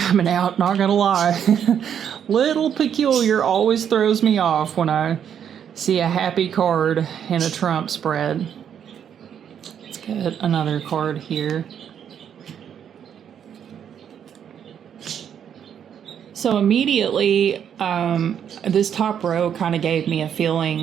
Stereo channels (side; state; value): left; quieter; 8.6 dB